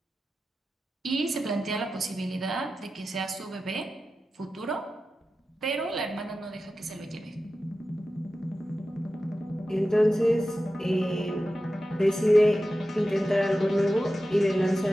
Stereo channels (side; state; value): both; normal; correlation 0.93